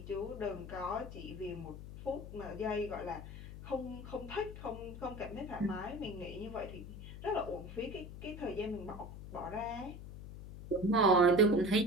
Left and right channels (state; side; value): noise; left; hum, 11 dB below the sound